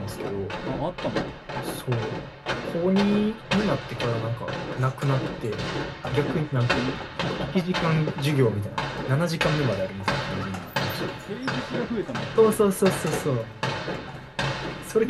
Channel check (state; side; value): identical; both; correlation 1.00